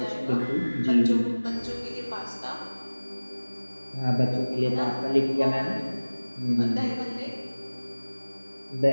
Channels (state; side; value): inverted; both; correlation -1.00